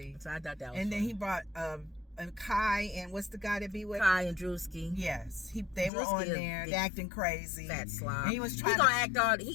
So I thought that was And funny. then he brought Kai and what's the guy that be with? Kai and Drewski. Yes. They were on there. They acting crazy. Fat slob. And he was trying he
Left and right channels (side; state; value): right; drops out; at 5.9 s